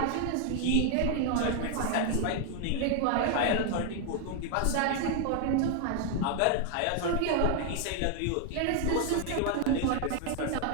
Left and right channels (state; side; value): different; both; correlation 0.00